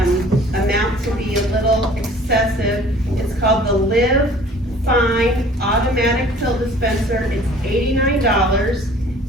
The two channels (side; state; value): both; normal; correlation 0.50